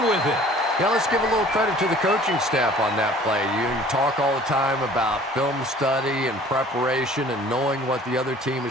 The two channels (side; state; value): both; normal; correlation 0.50